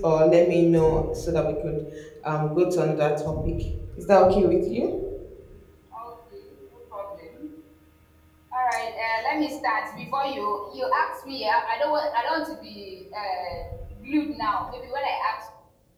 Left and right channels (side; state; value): both; identical; correlation 1.00